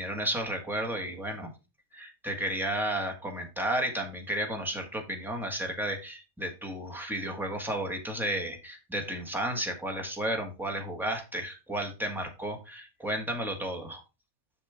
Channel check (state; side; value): normal; both; correlation 0.30